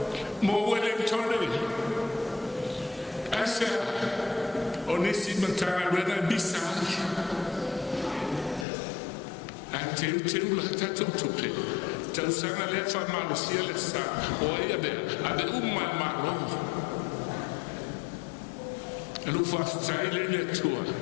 mo wele tone asa o ni si mantara rena bisa ante la tatu tupe tau sanga le fa malo sia le sa o ia be ade umma malo lu fa stai le tua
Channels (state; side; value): drops out; right; at 8.7 s